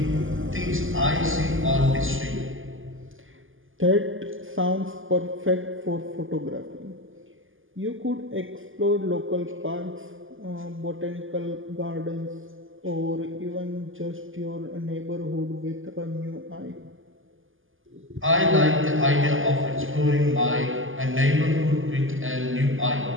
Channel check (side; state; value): left; late; 0.58 ms